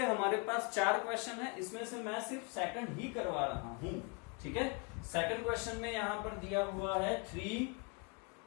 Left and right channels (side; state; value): right; quieter; 32.1 dB